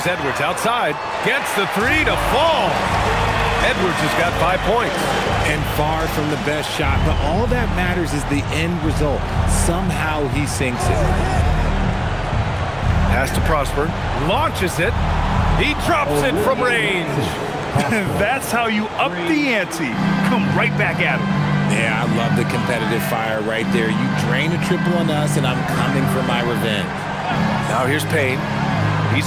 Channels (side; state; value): both; identical; correlation 1.00